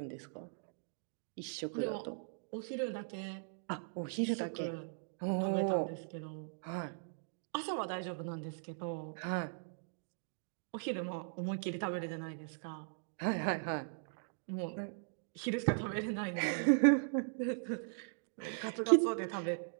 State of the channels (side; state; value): left; silent; digital silence